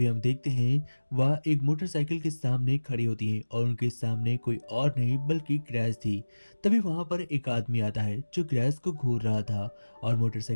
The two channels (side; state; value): both; inverted; correlation -1.00